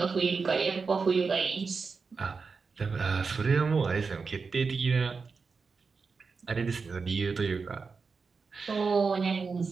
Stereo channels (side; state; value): left; quieter; 4.9 dB